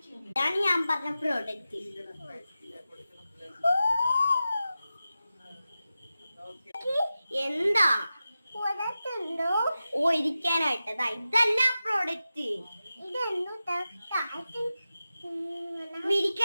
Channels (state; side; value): inverted; both; correlation -0.93